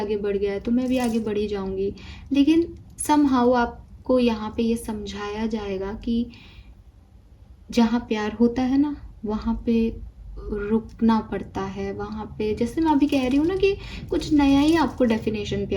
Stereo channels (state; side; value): identical; both; correlation 1.00